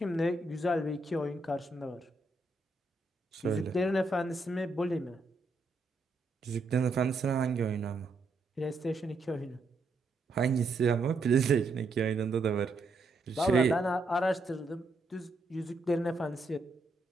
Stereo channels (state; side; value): quieter; left; 3.0 dB